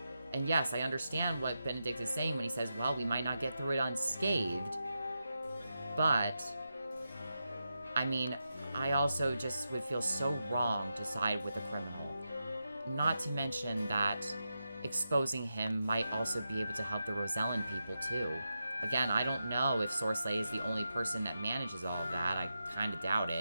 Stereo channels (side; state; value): both; inverted; correlation -0.88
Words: And yes, I understand what Benedict is saying when he says, well, we might not get through it unscathed, but... I mean, I also just would feel so wrong to side with a criminal. Not to mention that exposing him might also be able to help the Rosellan people, too. Again, I don't know if Sorsley is the only person that manages all of that. I kind of doubt